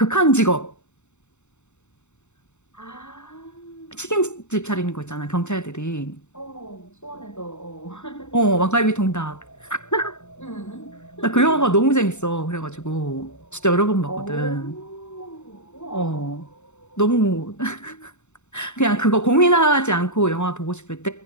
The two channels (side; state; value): right; late; 0.83 ms